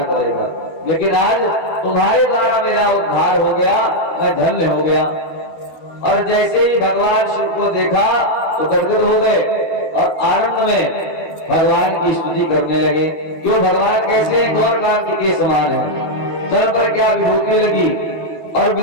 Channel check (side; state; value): right; late; 12 ms